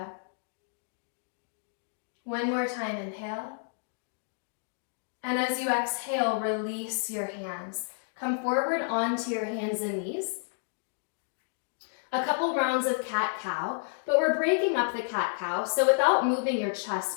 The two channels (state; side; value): silent; right; digital silence